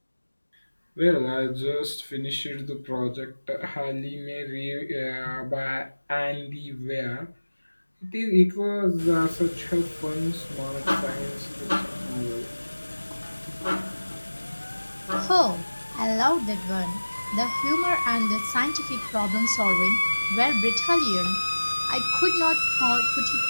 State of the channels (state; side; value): inverted; both; correlation -1.00